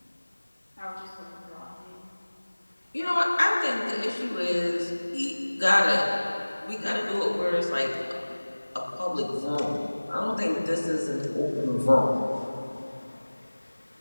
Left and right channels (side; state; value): both; inverted; correlation -1.00